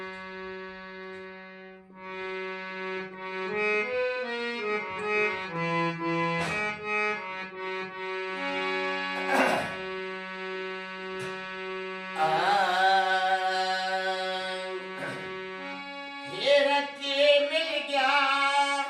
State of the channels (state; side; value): identical; both; correlation 1.00